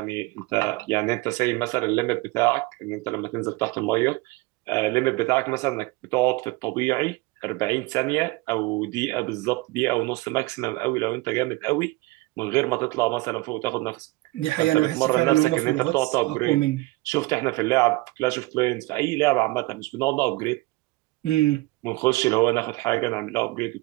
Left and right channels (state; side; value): quieter; left; 21.4 dB